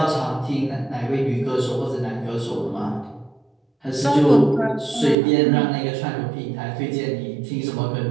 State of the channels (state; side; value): drops out; left; at 5.2 s